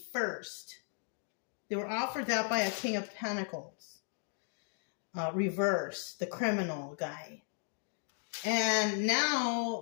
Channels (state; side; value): silent; right; 54 dB below the other